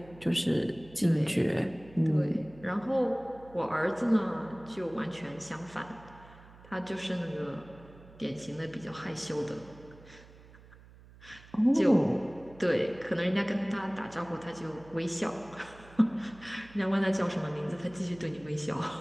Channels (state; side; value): noise; right; hum, 22 dB below the sound